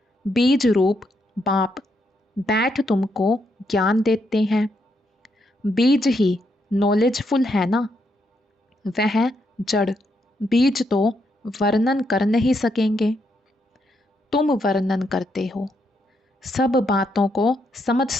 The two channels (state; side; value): normal; both; correlation 0.78